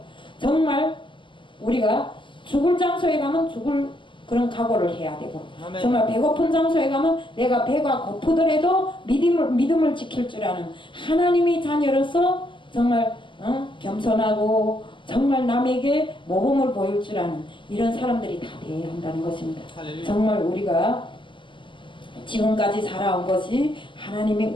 정말 우리가 죽을 장소에 가면 죽을 그런 각오를 해야 되고, 정말 배고픈 장소에 가면 내가 배가 고프더라도 믿음을 지킬 줄 아는 하나님의 자녀로서 정말 겸손하고 정말 남에게 모범을 보일 줄 아는 이런 사람들이 다 되어야 한다는 것입니다. 정말 우리가 지금까지 살아온 것이 하나님의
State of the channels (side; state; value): right; late; 0.24 ms